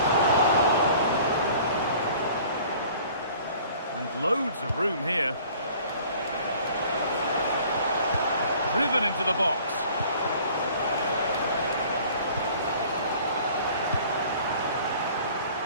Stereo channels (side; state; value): both; inverted; correlation -0.50